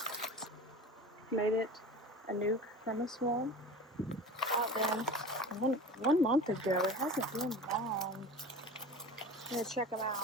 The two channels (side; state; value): both; normal; correlation 0.35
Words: Made it a nuke from a swarm. Out there one month ago. It hasn't been long. I'm gonna check them